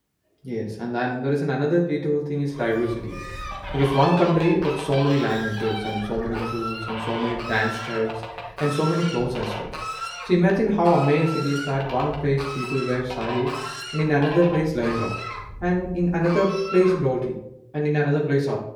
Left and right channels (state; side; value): identical; both; correlation 1.00